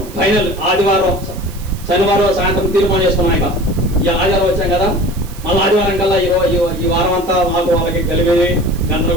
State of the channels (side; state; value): right; noise; hiss, 19 dB below the sound